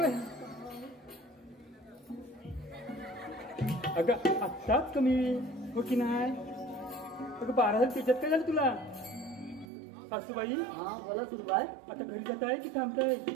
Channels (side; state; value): left; drops out; at 9.7 s